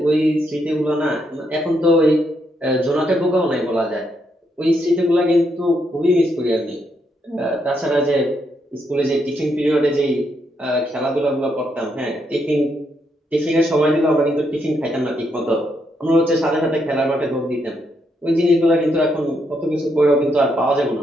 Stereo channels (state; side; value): normal; both; correlation 0.78